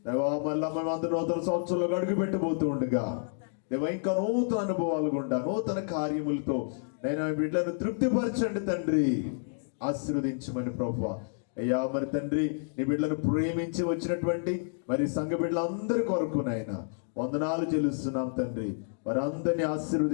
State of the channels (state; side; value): silent; right; digital silence